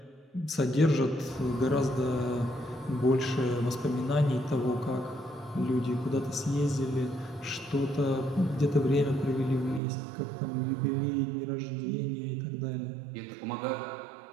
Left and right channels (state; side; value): drops out; left; at 9.8 s